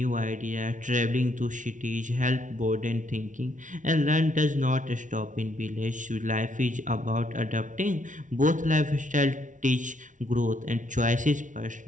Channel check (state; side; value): late; left; 0.37 ms